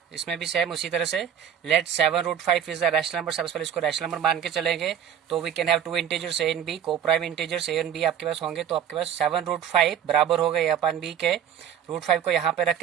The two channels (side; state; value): left; quieter; 9.0 dB